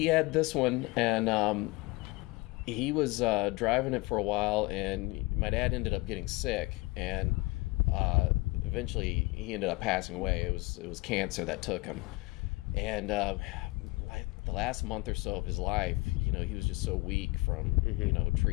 had this one, and he was driving it for a while, and my dad ended up getting sick, and eventually he ended up passing away. It was cancer that took him, and the last month or so of his life, he was just so weak from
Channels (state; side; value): quieter; right; 22.6 dB